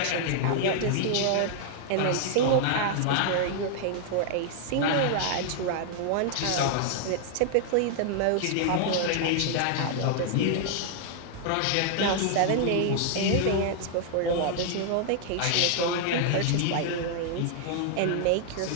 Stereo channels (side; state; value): both; different; correlation 0.00